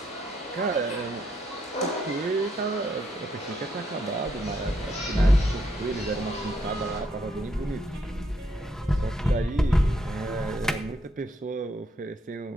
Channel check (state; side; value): normal; both; correlation 0.75